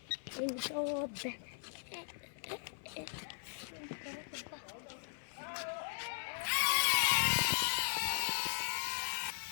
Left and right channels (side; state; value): right; silent; 52 dB below the other